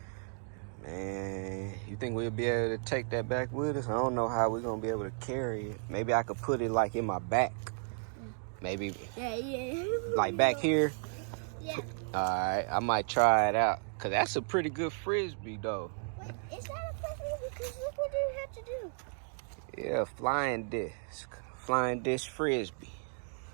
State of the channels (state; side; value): silent; left; 55 dB below the other